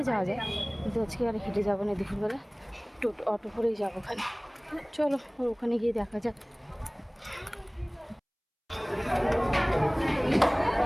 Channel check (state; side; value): identical; both; correlation 1.00